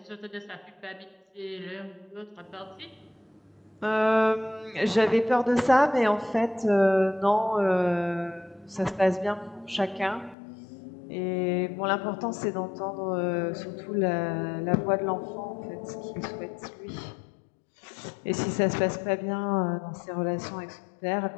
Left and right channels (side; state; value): right; drops out; at 10.4 s